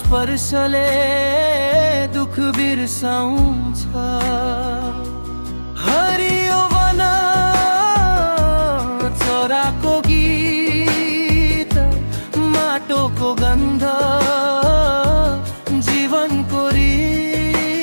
स्पर्शले दुख बिर्साउँछ। हरियो वन चराको गीत, माटोको गन्ध, जीवनको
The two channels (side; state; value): both; inverted; correlation -1.00